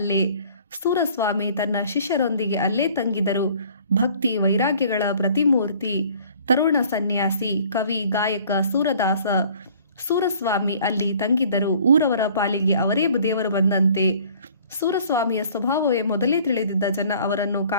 ಸೂರಸ್ವಾಮಿ ತನ್ನ ಶಿಷ್ಯರೊಂದಿಗೆ ಅಲ್ಲೇ ತಂಗಿದರು. ಭಕ್ತಿ ವೈರಾಗ್ಯಗಳ ಪ್ರತಿಮೂರ್ತಿ. ತರುಣ ಸನ್ಯಾಸಿ, ಕವಿ, ಗಾಯಕ ಸೂರದಾಸ ಸೂರಸ್ವಾಮಿ ಅಲ್ಲಿ ತಂಗಿದ್ದರು. ಊರವರ ಪಾಲಿಗೆ ಅವರೇ ದೇವರು ಬಂದಂತೆ. ಸೂರಸ್ವಾಮಿಯ ಸ್ವಭಾವವೇ ಮೊದಲೇ ತಿಳಿದಿದ್ದ ಜನ ಅವರನ್ನು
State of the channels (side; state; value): both; inverted; correlation -0.53